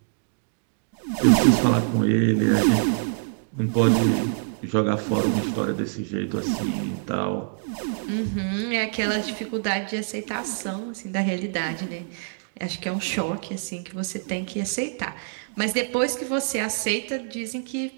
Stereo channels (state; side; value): silent; left; digital silence